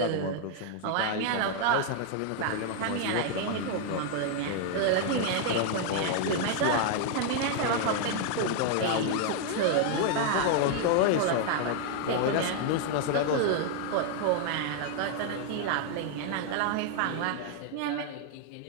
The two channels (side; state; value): both; different; correlation 0.00